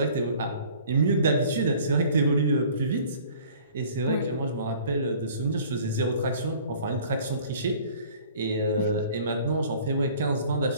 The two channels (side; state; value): both; inverted; correlation -0.51